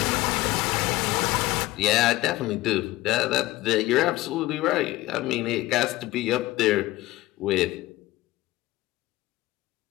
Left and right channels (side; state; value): right; quieter; 17.7 dB